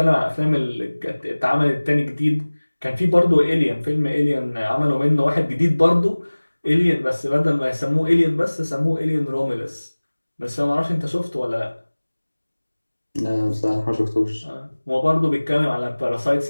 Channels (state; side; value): inverted; both; correlation -1.00